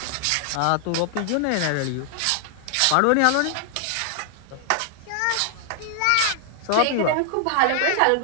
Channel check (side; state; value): both; different; correlation 0.00